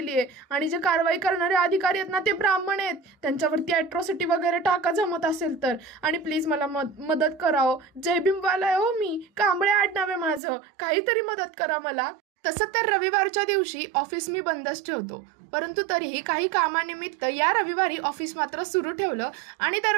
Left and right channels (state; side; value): drops out; left; at 10.4 s